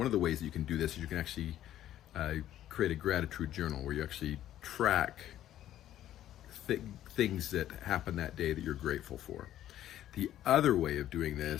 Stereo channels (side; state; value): right; quieter; 12.3 dB